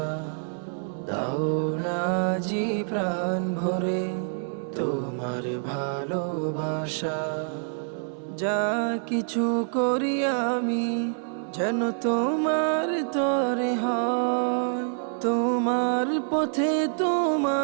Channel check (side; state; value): left; silent; 60 dB below the other